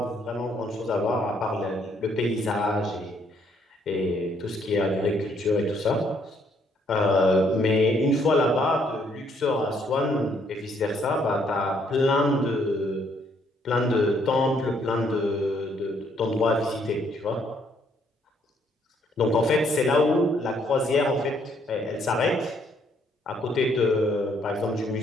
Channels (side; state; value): both; normal; correlation 0.68